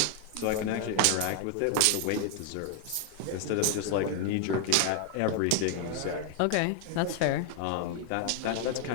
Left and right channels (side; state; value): both; different; correlation 0.00